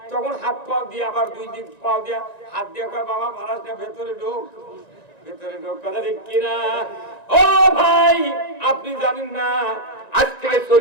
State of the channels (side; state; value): right; late; 1.9 ms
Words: তখন হাত পাও দিয়ে আবার 2 দিক পাও দিয়ে হাত দিয়ে কয় বাবা মারাস না ভেতরে ঢোক কথা ঠিক কিনা ও ভাই আপনি জানেন না আজ থেকে